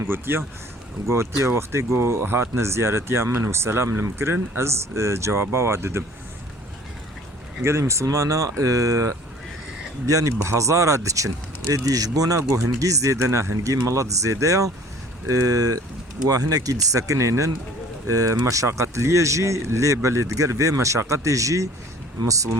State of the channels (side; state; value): both; normal; correlation 0.50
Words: قوتيا وقت قو هاتنا زيارتي من وسلام المكرن از جوابا واددم قال مسلمانا يعني بهزارة دچن ادي جبونا قو هنجي زيدنا هنجي ملط زيدايا وهنا كي سكنينن مشاقة ليجي لي بلدقر في مشاقة جي